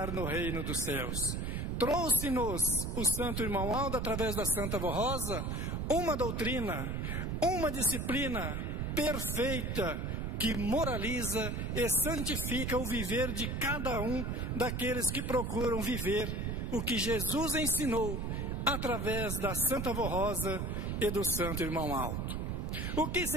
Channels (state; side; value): noise; right; rumble, 1 dB below the sound